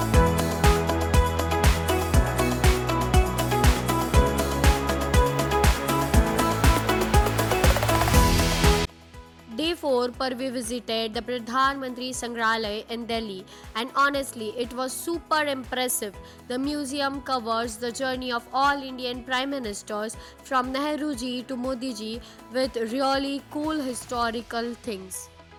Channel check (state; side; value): identical; both; correlation 1.00